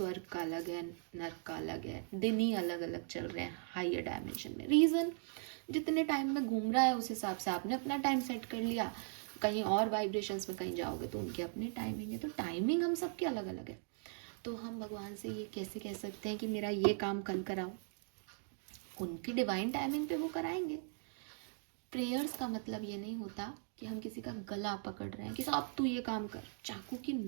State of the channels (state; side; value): silent; left; 52 dB below the other